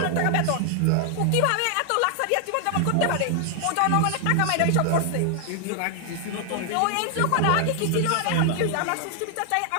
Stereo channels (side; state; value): both; different; correlation 0.00